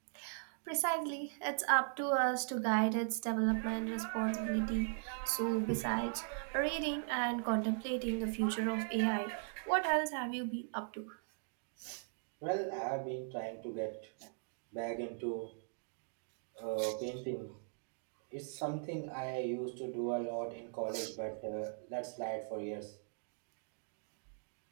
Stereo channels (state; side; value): silent; left; digital silence